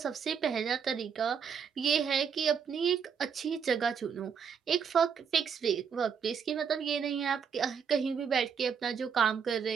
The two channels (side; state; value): left; quieter; 6.9 dB